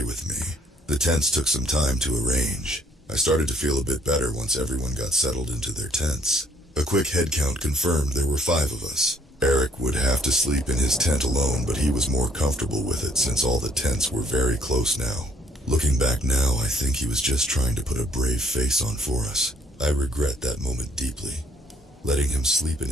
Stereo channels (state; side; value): normal; both; correlation 0.64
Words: with me. The tents took some time to arrange. I started to feel a bit better once everyone got settled into their tents. A quick head count confirmed there were 5 of us. Eric would have to sleep in his tent alone, but he was more comfortable with it since all the tents were very close now. Looking back now, I think he was just trying to put a brave face on for us. I regret that moment deeply, letting him sleep in